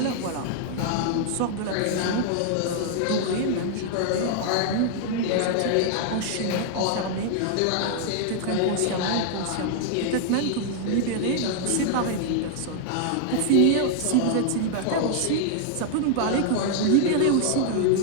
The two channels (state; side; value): different; both; correlation 0.00